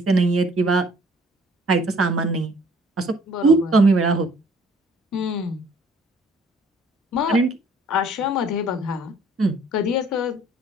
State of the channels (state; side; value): normal; both; correlation 0.58